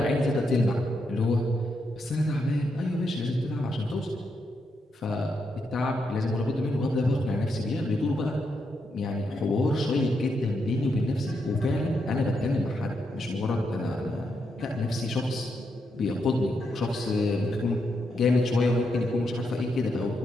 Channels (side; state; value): both; normal; correlation 0.81